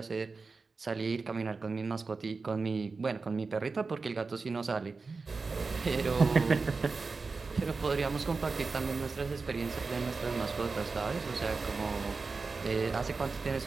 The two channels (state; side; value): quieter; left; 4.3 dB